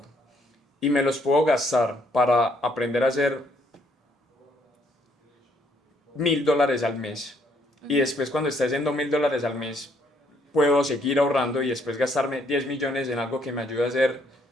y me los puedo gastar para aprender a hacer $1.000 al mes. Y después cuando esté haciendo $1.000 al mes, puedo seguir ahorrando y después gastarme 10 millones en algo que me ayude a hacer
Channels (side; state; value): both; normal; correlation 0.69